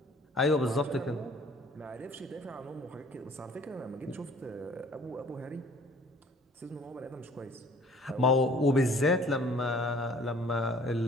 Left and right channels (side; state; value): both; normal; correlation 0.53